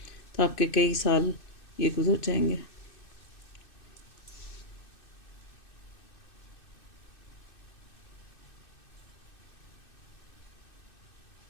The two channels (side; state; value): right; late; 2.6 ms